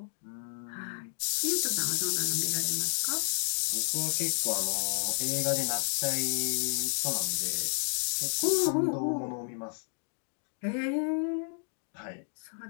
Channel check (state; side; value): silent; right; digital silence